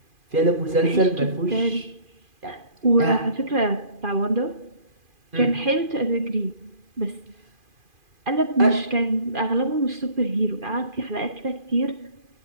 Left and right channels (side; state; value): left; late; 2.5 ms